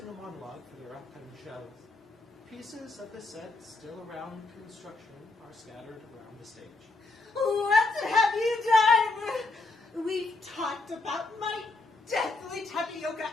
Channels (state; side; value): quieter; right; 3.4 dB